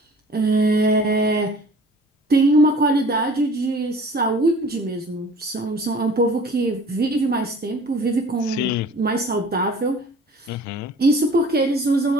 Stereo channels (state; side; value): normal; both; correlation 0.47